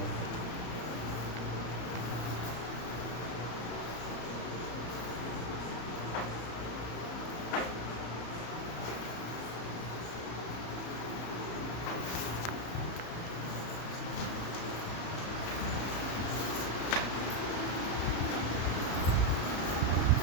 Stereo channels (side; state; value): right; late; 34 ms